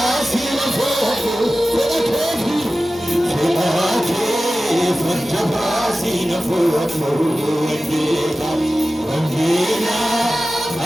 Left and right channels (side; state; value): both; normal; correlation 0.95